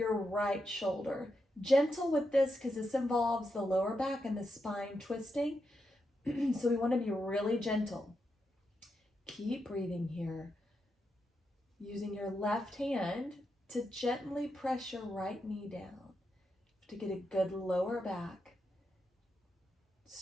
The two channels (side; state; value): both; normal; correlation 0.85